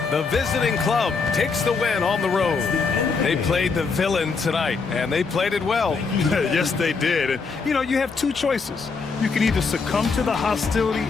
The visiting club takes the win on the road. They played the villain tonight, and they played it well. Yes, they did. And, you know, you have two choices. You can either succumb to the hostility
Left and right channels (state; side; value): quieter; right; 4.8 dB